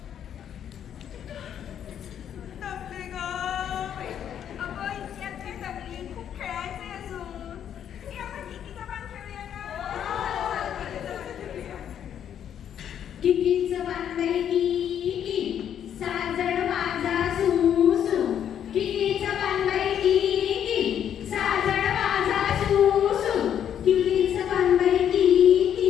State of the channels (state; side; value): quieter; right; 9.4 dB